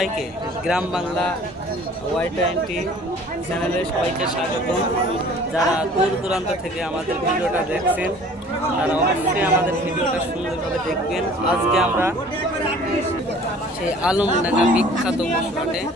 গ্রাম বাংলা Y20 চ্যানেলে সবাইকে স্বাগতম। যারা দূর দূরান্ত থেকে আমাদের ভিডিওটা দেখছেন তারা অবশ্যই আমাদের ভিডিওটা সুন্দরভাবে দেখবেন। আজকে আমরা সেই আলমডাঙ্গা বিখ্যাত পশু হাটে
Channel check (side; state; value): both; normal; correlation 0.50